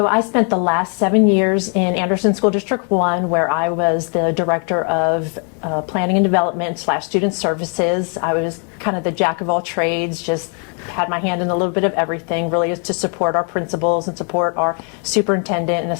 I spent the last 7 years in Anderson School District 1, where I was the director of planning and development / student services. I was kind of the jack of all trades, just had my hand in a little bit of everything, really is to support our principals and support our superintendent and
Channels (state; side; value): quieter; right; 39.9 dB